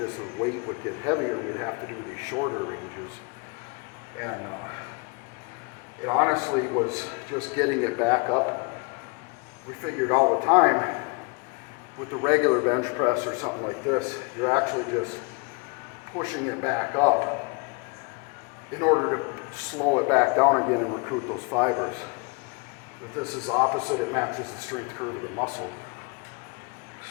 as the weight would get heavier, we'd have to do these shorter ranges. And it honestly was just getting it back up. We figured all the time with the regular bench press or something like this, you're actually just pushing it back up in order to slow it back down again and recruit those fibers. But this is opposite, it matches the strength curve of the muscle.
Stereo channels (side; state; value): right; quieter; 32.4 dB